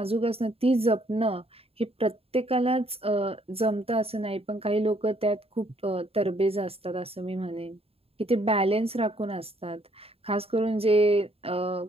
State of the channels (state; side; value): late; left; 0.28 ms